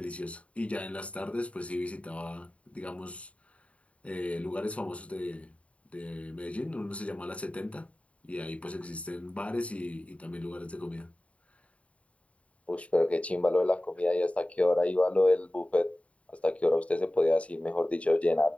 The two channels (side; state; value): right; late; 0.065 ms